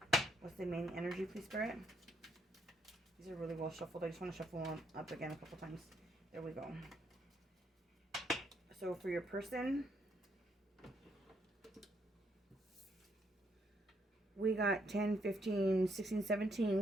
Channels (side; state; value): both; normal; correlation 0.74